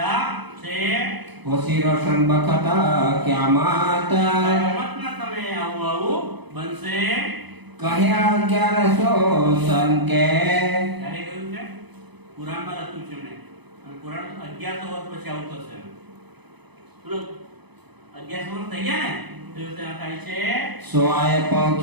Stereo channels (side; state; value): left; late; 0.99 ms